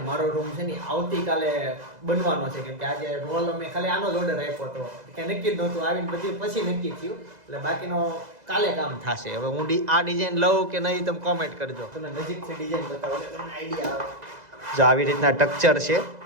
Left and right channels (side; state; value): left; late; 2.0 ms